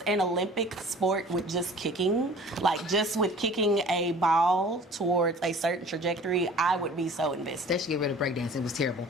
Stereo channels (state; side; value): normal; both; correlation 0.46